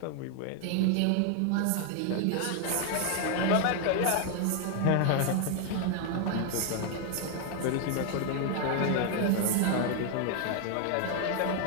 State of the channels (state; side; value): different; both; correlation 0.01